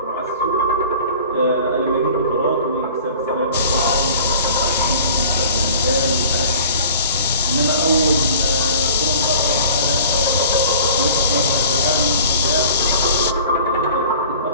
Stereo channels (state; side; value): inverted; both; correlation -0.46